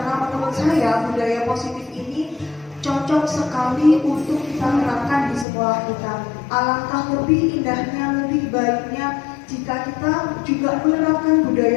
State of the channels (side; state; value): right; drops out; at 5.5 s